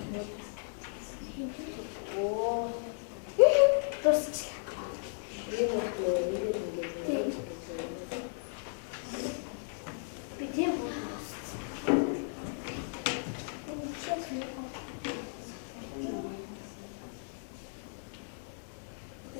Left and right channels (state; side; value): silent; right; digital silence